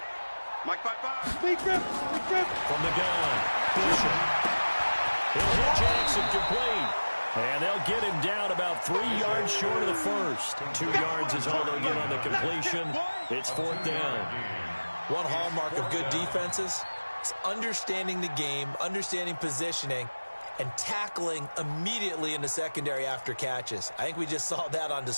Mike 5-5. Big grip. From the gun, Bishop. He'll hit Jackson complete. And they'll get him down about 3 yards short of the first. 2 yards is all they'll get on the completion. It's 4th down. One hallmark of good defenses is understanding the game, understanding positioning, and tackling immediately in the secondary after catches. I think we just saw that on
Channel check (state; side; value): inverted; both; correlation -1.00